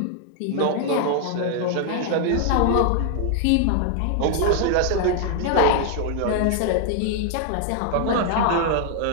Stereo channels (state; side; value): different; both; correlation 0.00